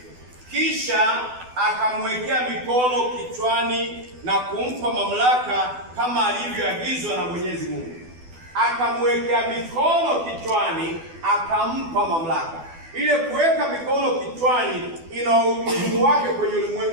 Kisha akamwekea mikono kichwani na kumpa mamlaka kama alivyoagizwa na Mwenyezi Mungu. Akamwekea mikono kichwani, akampa mamlaka. Ile kuweka mikono kichwani ina umuhimu wake kwenye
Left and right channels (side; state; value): left; late; 12 ms